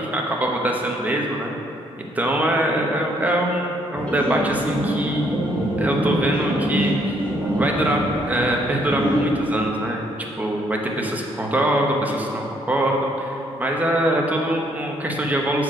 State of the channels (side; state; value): both; normal; correlation 0.68